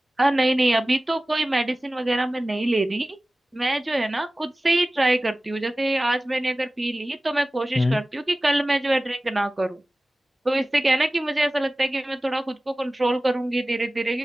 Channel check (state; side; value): normal; both; correlation 0.97